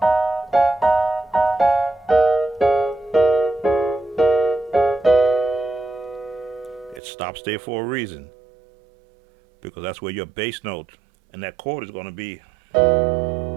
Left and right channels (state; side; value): drops out; left; at 7.0 s